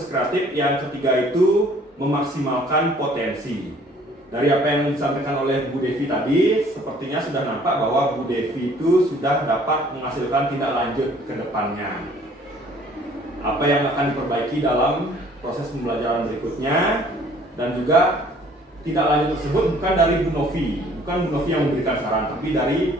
kreatif yang ketiga itu memaksimalkan potensi. Dari apa yang disampaikan oleh Bu Devi tadi, sepertinya sudah nampak bahwa Bu Devi itu sudah dapat menghasilkan tindak lanjut ke depannya. Apa yang akan diperbaiki dalam proses pembelajaran berikutnya, dan juga tindak lanjut tersebut bukan dari Bu Novi, bukan Bu Novi yang memberikan saran, tapi dari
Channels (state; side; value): normal; both; correlation 0.57